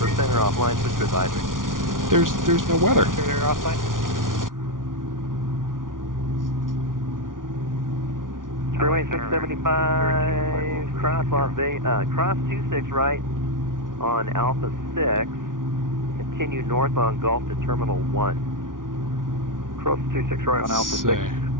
or offline, switch to advisory. There's no weather. Freeway 675, cross Las Vegas, cross 26 right on Alpha 6, continue north on Gulf to Terminal 1. Cross 26 right on Alpha 6,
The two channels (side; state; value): left; late; 0.89 ms